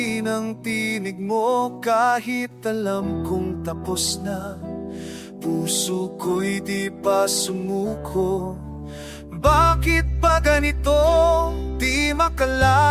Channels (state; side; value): identical; both; correlation 1.00